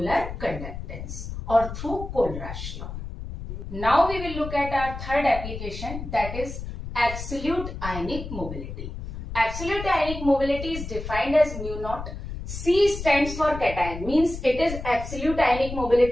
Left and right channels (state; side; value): noise; left; rumble, 8 dB below the sound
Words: conductance और through Kohlrausch law. Now we will look at our third application, that is absolute ionic mobility. Absolute ionic mobility is defined as mu naught. C stands for cation, means it is absolute ionic